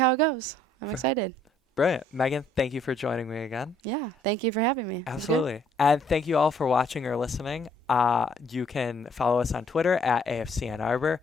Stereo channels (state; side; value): normal; both; correlation 0.64